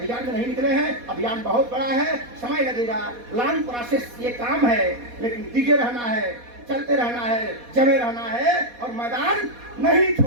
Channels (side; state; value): left; late; 4.2 ms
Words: में नहीं निकले हैं। अभियान बहुत बड़ा है, समय लगेगा, लॉन्ग प्रोसेस ये काम है, लेकिन दिखे रहना है, चलते रहना है, जमे रहना है और मैदान नहीं